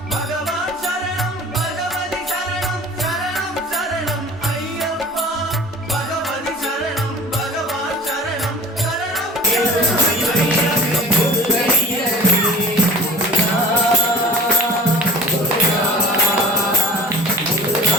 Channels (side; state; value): both; normal; correlation 0.42